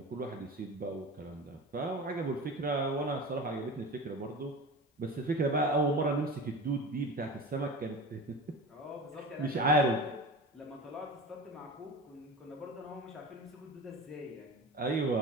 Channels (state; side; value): normal; both; correlation 0.32